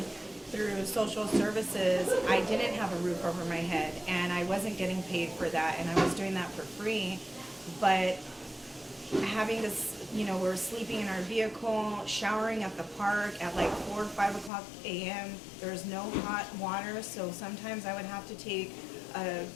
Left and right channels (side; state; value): right; drops out; at 14.5 s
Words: through social services, I didn't have a roof over my head and I wasn't getting paid for that, and I was doing that for free. But having this, we're sleeping in our vehicle, showering at the park at like 4 or 5 o'clock a.m. There's no hot water, so sometimes I would have to take